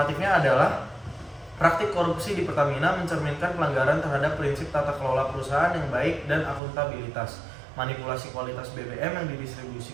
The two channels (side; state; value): left; drops out; at 6.6 s